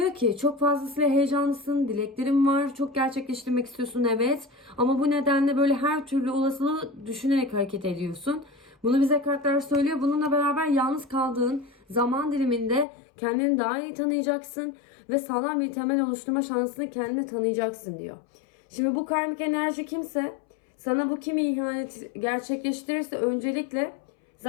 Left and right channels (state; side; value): drops out; right; at 12.9 s